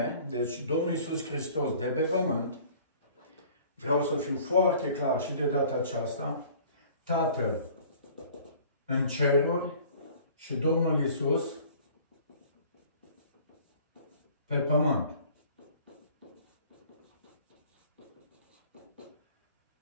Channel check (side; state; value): both; inverted; correlation -0.50